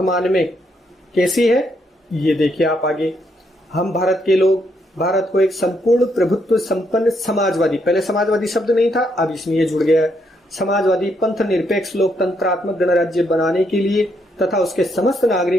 में कैसी है, ये देखिए आप आगे। हम भारत के लोग भारत को एक संपूर्ण प्रभुत्व संपन्न समाजवादी, पहले समाजवादी शब्द नहीं था, अब इसमें ये जुड़ गया है, समाजवादी पंथ निरपेक्ष लोकतंत्रात्मक गणराज्य बनाने के लिए तथा उसके समस्त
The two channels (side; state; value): both; normal; correlation 0.76